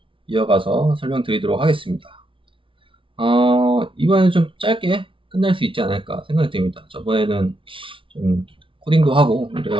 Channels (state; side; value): late; left; 0.25 ms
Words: 이어가서 설명드리도록 하겠습니다. 이번에는 좀 짧게 끝낼 수 있지 않을까 생각이 듭니다. 저번에는 좀 코딩도 하고